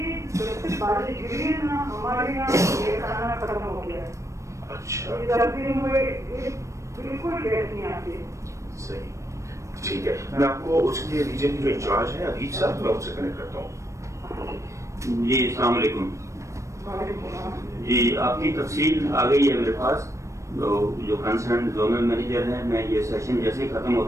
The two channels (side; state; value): left; late; 0.15 ms